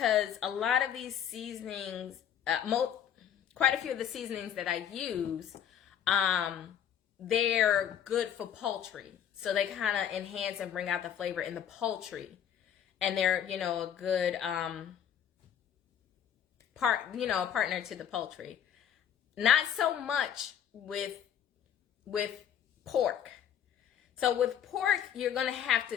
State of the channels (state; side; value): quieter; right; 9.3 dB